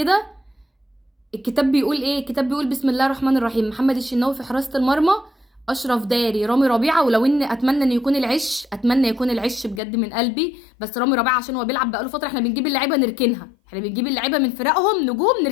الكتاب بيقول ايه؟ الكتاب بيقول بسم الله الرحمن الرحيم: محمد الشناوي في حراسة المرمى، اشرف داري، رامي ربيعه. ولو ان اتمنى ان يكون العش، اتمنى يكون العش بجد من قلبي، بس رامي ربيعه عشان هو بيلعب بقاله فتره. احنا بنجيب اللعيبه نركنها، احنا بنجيب اللعيبه من فرقهم نجوم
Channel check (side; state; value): right; drops out; at 9.8 s